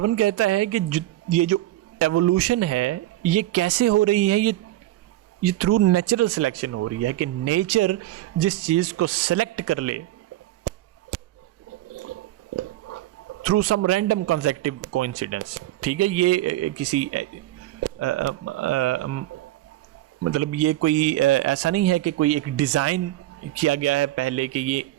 कहता है कि ये जो evolution है ये कैसे हो रही है, ये थ्रू नेचुरल सिलेक्शन हो रही है कि नेचर जिस चीज़ को सेलेक्ट कर ले through some random consecutive coincidence. ठीक है, ये किसी मतलब ये कोई ऐसा नहीं है कि कोई एक डिज़ाइन किया गया है पहले कि ये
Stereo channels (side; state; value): left; quieter; 15.3 dB